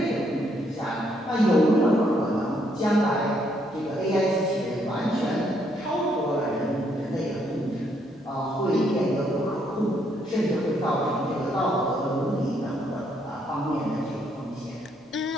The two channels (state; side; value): normal; both; correlation 0.72